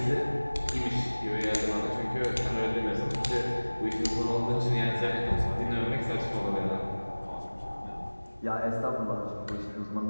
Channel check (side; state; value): both; inverted; correlation -1.00